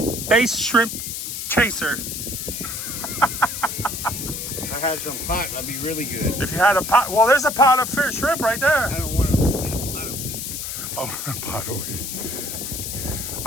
shrimp chaser. If I had some pot, that'd be really good. If you had a pot, well, there's a pot of fish shrimp right there. I don't want to get a pot of wheat. Oh, a pot of wheat.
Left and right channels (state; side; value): noise; left; hiss, 5 dB below the sound